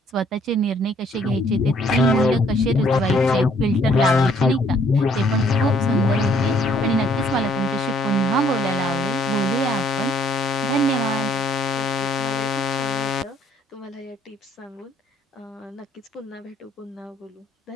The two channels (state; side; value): normal; both; correlation 0.63